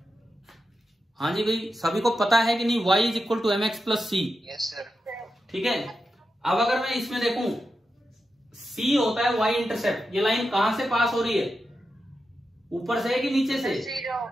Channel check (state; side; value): normal; both; correlation 0.89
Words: हाँ जी भाई, सभी को पता है कि नहीं y = mx + c? Yes sir. ठीक है। अब अगर मैं इसमें देखूं सी होता है वाई इंटरसेप्ट। ये लाइन कहां से पास हो रही है, ऊपर से कि नीचे से,